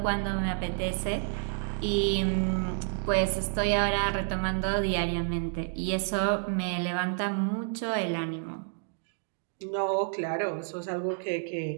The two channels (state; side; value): silent; left; digital silence